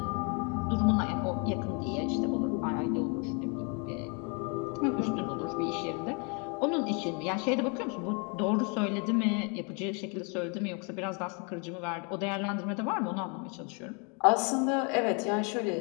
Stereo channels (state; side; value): quieter; right; 34.6 dB